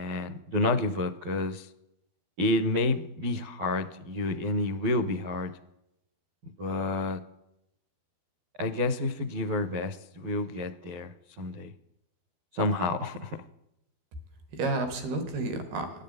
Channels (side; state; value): left; late; 12 ms